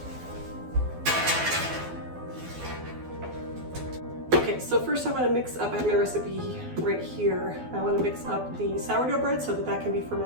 Okay, so first I want to mix up, I have my recipe right here. I want to mix up the sourdough bread so that that can be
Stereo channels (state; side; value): late; left; 12 ms